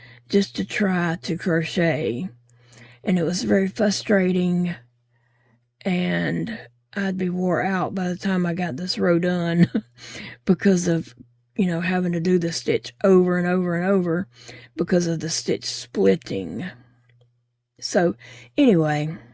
just to try to crochet. And it was very frustrating, and I'd be wore out by the time I got this row done because of, having to do the stitch over and over and over because of the stitch splitting. So anyway,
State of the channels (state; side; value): identical; both; correlation 1.00